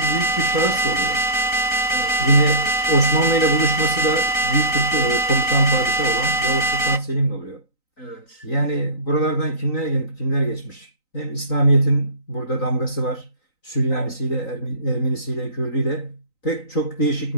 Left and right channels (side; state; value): right; late; 3.9 ms